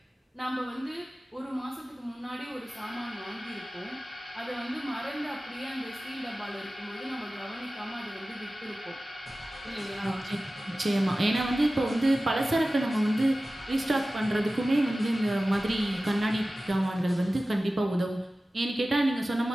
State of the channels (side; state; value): both; normal; correlation 0.96